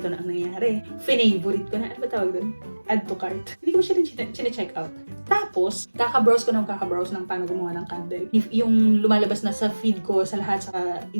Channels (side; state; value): both; inverted; correlation -1.00